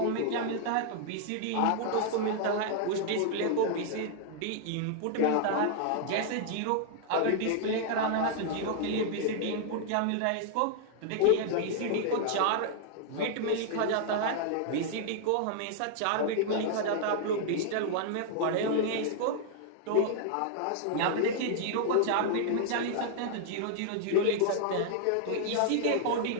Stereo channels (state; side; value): different; both; correlation 0.00